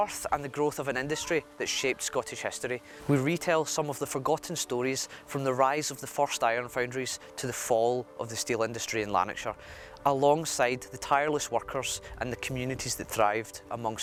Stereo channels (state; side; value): identical; both; correlation 1.00